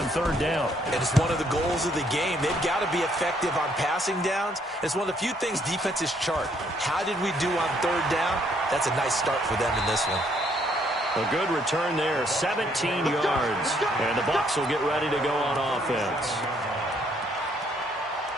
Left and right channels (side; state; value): both; normal; correlation 0.68